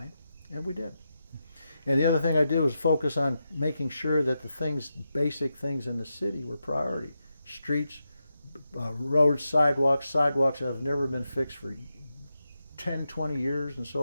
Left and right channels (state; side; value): inverted; both; correlation -0.88